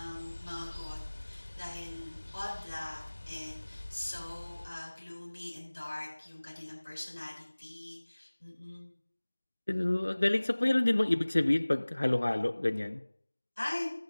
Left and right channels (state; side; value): inverted; both; correlation -1.00